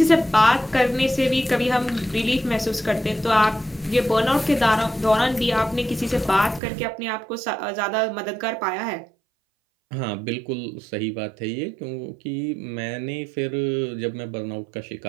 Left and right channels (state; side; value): drops out; left; at 6.6 s